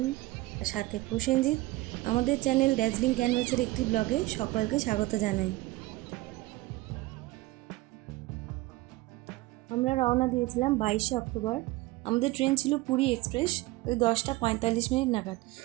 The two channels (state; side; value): quieter; left; 19.3 dB